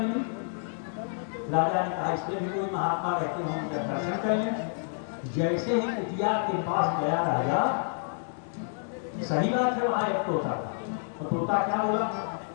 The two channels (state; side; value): silent; right; digital silence